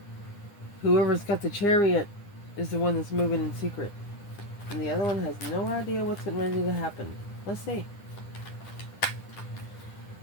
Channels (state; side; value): late; right; 9.9 ms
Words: Whoever's got the Chariot is the one that's moving in secret. And the other one has no idea what's getting ready to happen. Let's see.